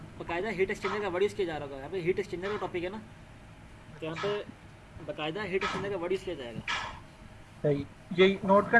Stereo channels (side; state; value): both; identical; correlation 1.00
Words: बाकायदा हीट एक्सचेंजर का वर्ड यूज़ किया जा रहा होगा। यहाँ पे हीट एक्सचेंजर का टॉपिक है ना, तो यहाँ पे बाकायदा हीट एक्सचेंजर का वर्ड यूज़ किया जाएगा। सही, यही नोट